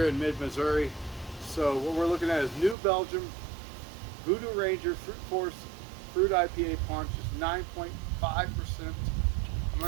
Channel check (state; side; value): drops out; left; at 2.8 s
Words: in mid-Missouri. So what we're looking at is New Belgium Voodoo Ranger Fruit Force Fruit IPA Punch. Is 9.5%. I'm